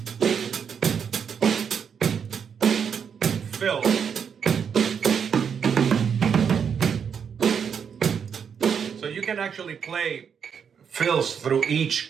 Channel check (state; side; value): quieter; left; 7.1 dB